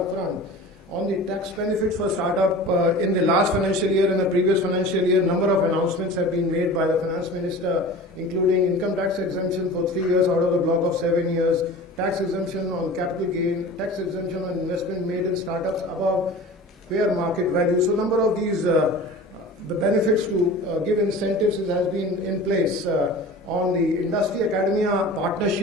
front. On the tax benefits for startup, in the last financial year and the previous financial year, number of announcements have been made by the Finance Minister, including income tax exemption for 3 years out of the block of 7 years, tax exemption on capital gain, tax exemption on investment made in startups above fair market value. So number of these the benefits to give incentives has been in place. On the industry academia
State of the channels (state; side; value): normal; both; correlation 0.38